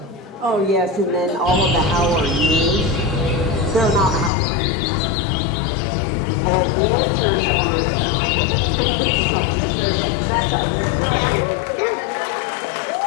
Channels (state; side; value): drops out; right; at 4.3 s